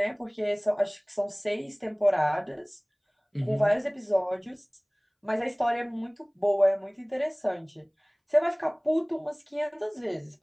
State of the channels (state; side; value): identical; both; correlation 1.00